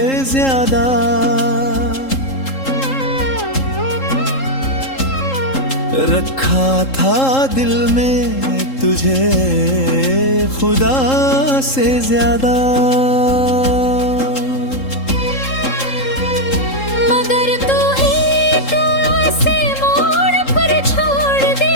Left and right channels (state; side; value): late; right; 3.7 ms